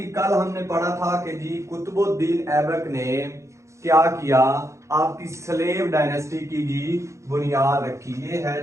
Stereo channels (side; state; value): left; late; 0.14 ms